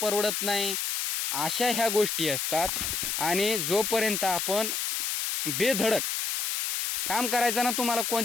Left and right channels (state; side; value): noise; left; hiss, 1 dB below the sound